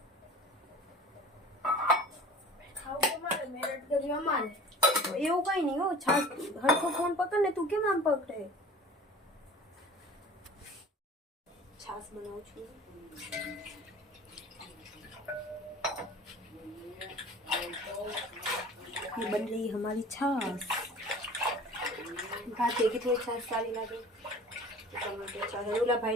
એવું કઈ નહીં હો. છાશ હરખો ફોન પકડ ને. તું કેમ આમ પકડે? છાશ બનાવું છું. ये बन रही है हमारी छाछ. भात देखी थोड़ी छाछ सारी लागे. टमाटर छाछ ओला भाई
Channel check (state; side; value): normal; both; correlation 0.43